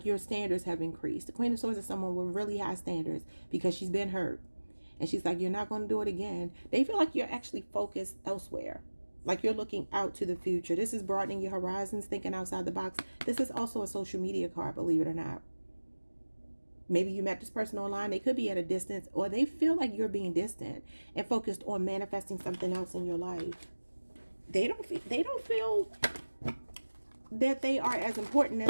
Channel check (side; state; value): both; inverted; correlation -1.00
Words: your standards have increased. The Queen of Swords is someone with really high standards because she's been hurt. And she's like, you're not going to do it again. They feel like you're actually focused elsewhere. Like you're looking out to the future. This is broadening your horizons, thinking outside the box. This is also a social media card, believe it or not. Maybe you met this person online. They could be at a distance, or they feel like you're being distant and focused on manifesting something else in your life. They don't feel that they are as important